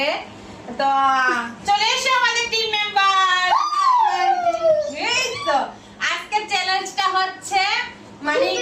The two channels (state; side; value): identical; both; correlation 1.00